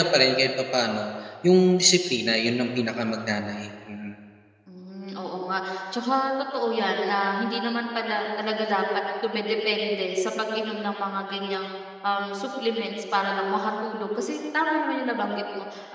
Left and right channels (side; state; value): both; identical; correlation 1.00